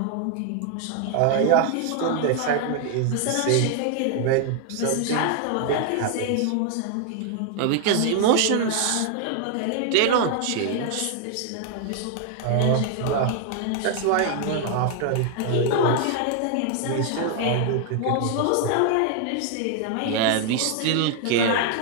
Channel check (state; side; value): different; both; correlation 0.00